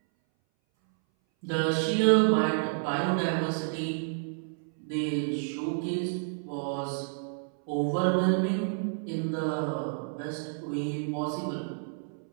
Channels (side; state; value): left; silent; 58 dB below the other